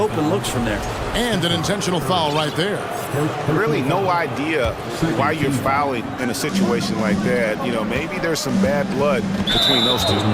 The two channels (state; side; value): identical; both; correlation 1.00